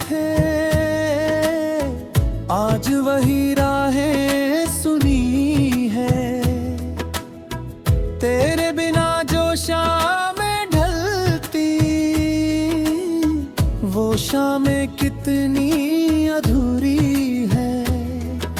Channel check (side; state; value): both; identical; correlation 1.00